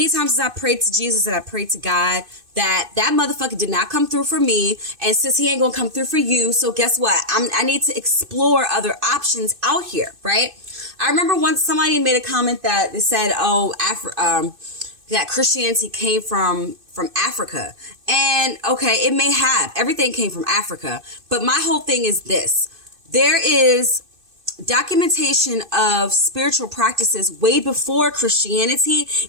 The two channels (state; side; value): late; left; 2.6 ms